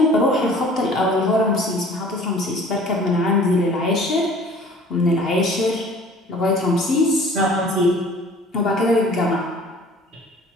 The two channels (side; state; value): both; normal; correlation 0.49